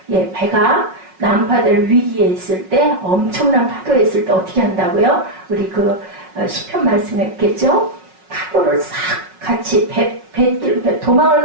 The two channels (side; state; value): left; late; 5.4 ms